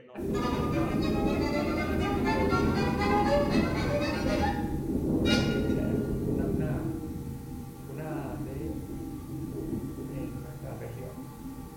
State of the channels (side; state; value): both; identical; correlation 1.00